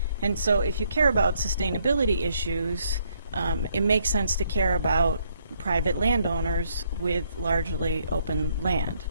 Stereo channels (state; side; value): inverted; both; correlation -0.70